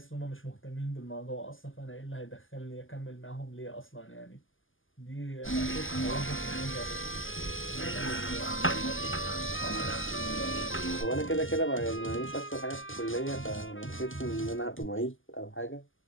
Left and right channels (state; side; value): late; right; 0.58 ms